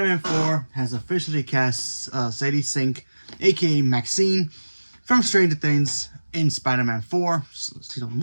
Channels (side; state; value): both; inverted; correlation -1.00